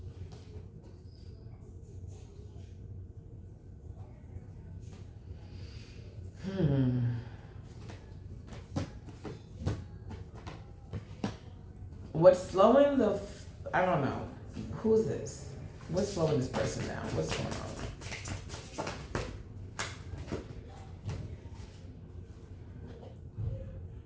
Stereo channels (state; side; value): identical; both; correlation 1.00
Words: What's slowing the... I don't know. Who's this? What's slowing this person down? What's going on?